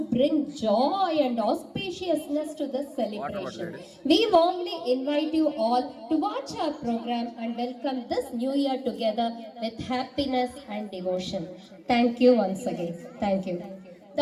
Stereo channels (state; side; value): identical; both; correlation 1.00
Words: bring joy and auspiciousness to this celebration. We warmly invite you all to watch our program and welcome this new year together with happiness and devotion. Thank you once again. Thank you.